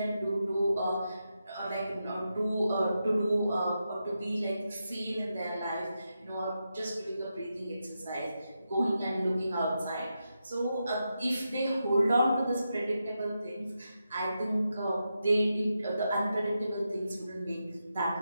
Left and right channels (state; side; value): inverted; both; correlation -0.87